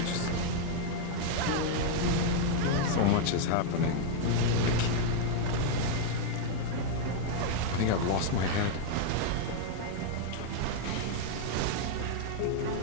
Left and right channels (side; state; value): both; different; correlation 0.00